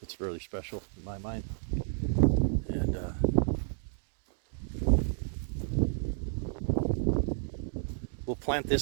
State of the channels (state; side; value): silent; left; 57 dB below the other